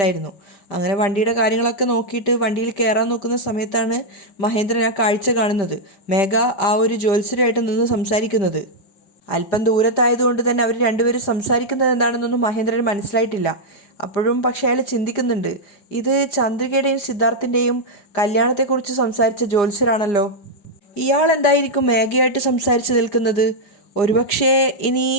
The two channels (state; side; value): late; right; 5.0 ms